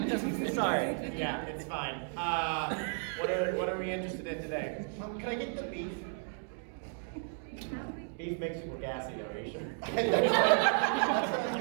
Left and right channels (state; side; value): silent; left; 55 dB below the other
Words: Sorry. Yeah, it's fine. What are we interested in today? Can I get the beef? Beef makes people gassy, though, are you sure?